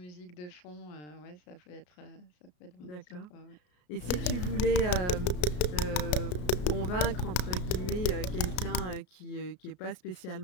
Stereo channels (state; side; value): late; right; 33 ms